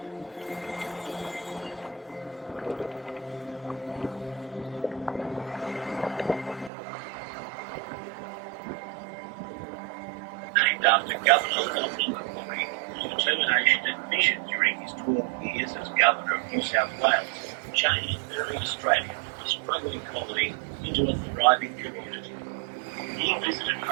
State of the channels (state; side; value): drops out; left; at 6.7 s